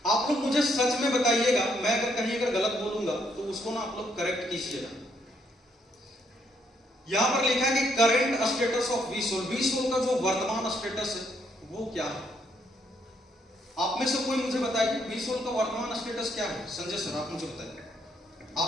आप लोग मुझे सच में बताइएगा, मैं अगर कहीं गलत बोलूंगा तो उसको ना आप लोग करेक्ट कीजिएगा। यहां पर लिखा है कि करंट स्टेटस ऑफ वीसोल। वीसोल का जो वर्तमान स्टेटस है वो क्या है? आप में से कोई मुझे बताइए वीसोल का वर्तमान स्टेटस क्या है? संजय सर आप मुझे बताइए,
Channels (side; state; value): both; normal; correlation 0.72